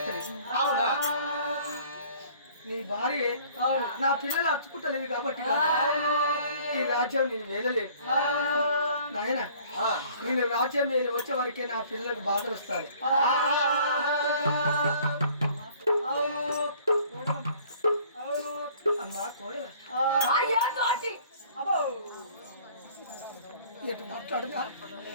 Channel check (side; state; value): both; inverted; correlation -0.54